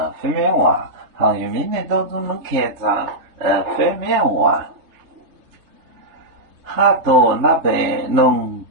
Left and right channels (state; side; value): late; left; 3.3 ms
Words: 非面话，好像明年都能看上非面话，哈多那边弄